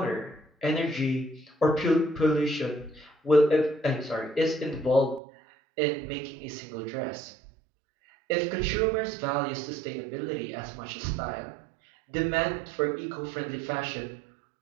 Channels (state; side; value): drops out; left; at 5.2 s